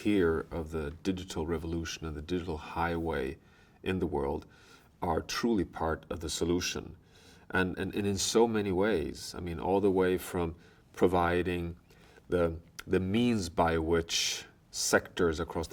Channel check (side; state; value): both; identical; correlation 1.00